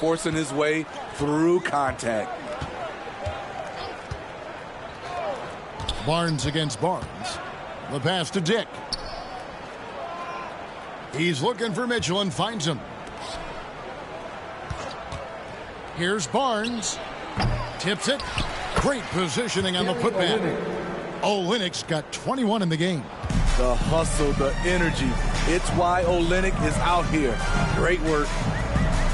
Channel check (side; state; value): both; identical; correlation 1.00